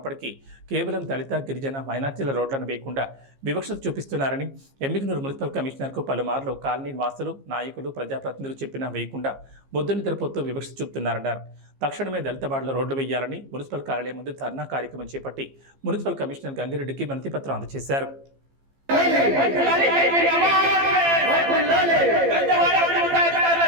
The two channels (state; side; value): late; left; 15 ms